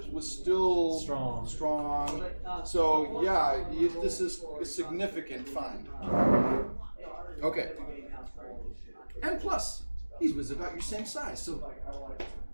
was still strong. So yeah, this is a significant find. Okay. And plus, he was about your same size, so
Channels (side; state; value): both; inverted; correlation -1.00